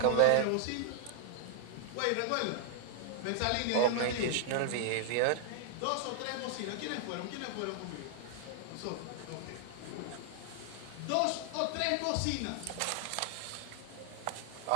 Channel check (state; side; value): different; both; correlation 0.00